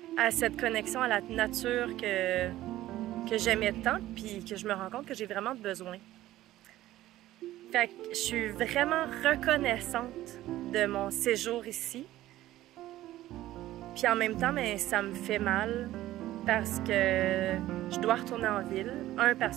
à cette connexion à la nature que j'aimais tant, puis que je me rends compte que j'ai vraiment besoin. Fait que je suis vraiment reconnaissante de mon séjour ici. Puis en même temps, mais ça me fait mal parce que je dois retourner en ville. Un,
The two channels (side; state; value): left; quieter; 15.0 dB